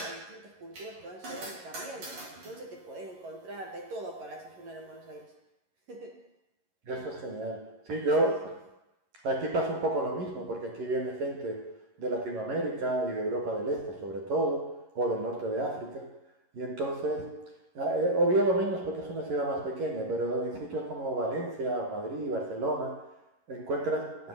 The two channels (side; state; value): left; late; 11 ms